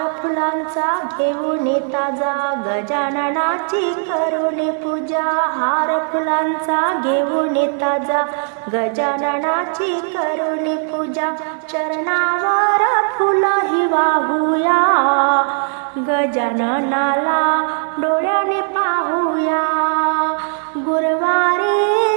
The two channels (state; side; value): silent; left; 67 dB below the other